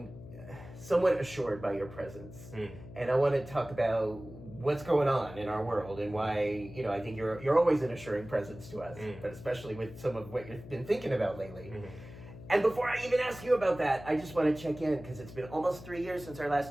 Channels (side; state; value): left; noise; hum, 15 dB below the sound